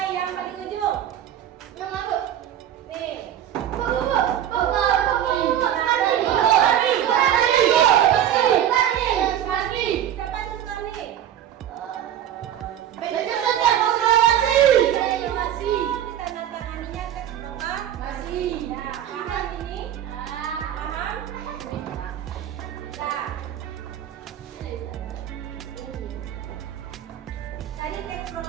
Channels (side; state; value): left; quieter; 10.7 dB